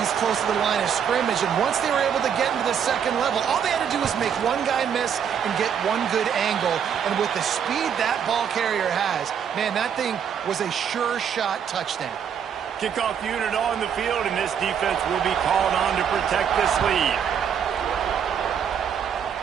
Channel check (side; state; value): left; quieter; 8.0 dB